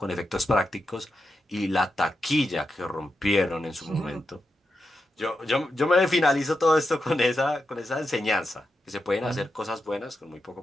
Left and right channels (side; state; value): both; normal; correlation 0.88